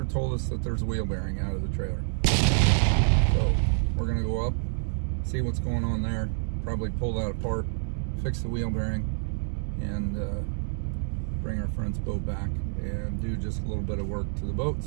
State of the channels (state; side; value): silent; left; digital silence